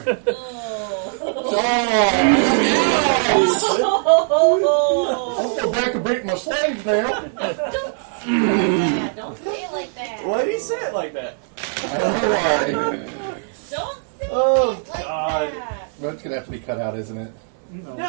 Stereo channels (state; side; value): silent; left; 65 dB below the other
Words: I'll go back and break my slaves now. Don't say it like that. Why did he say it like that? I don't know why. Don't say Oh, it like God. that. That's gonna have to be cut out, isn't it? No.